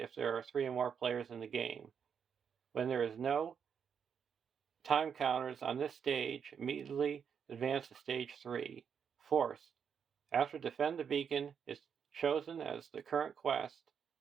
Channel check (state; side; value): quieter; left; 7.2 dB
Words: there are 3 or more players in the game. When there is no time counters on this stage, immediately advance to stage 3. Forced. After Defend the Beacon is chosen as the current quest,